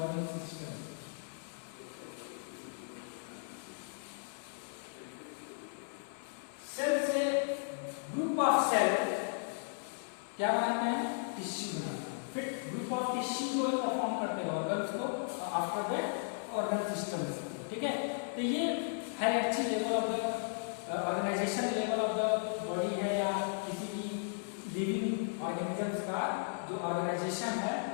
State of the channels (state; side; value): silent; right; 54 dB below the other